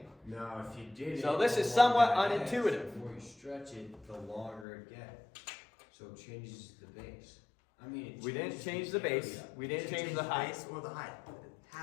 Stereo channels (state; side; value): drops out; right; at 4.7 s